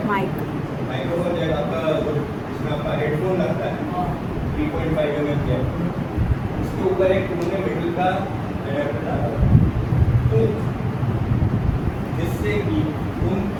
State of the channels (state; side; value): identical; both; correlation 1.00